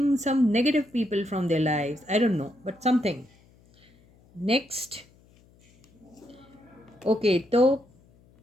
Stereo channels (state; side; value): noise; left; hum, 30 dB below the sound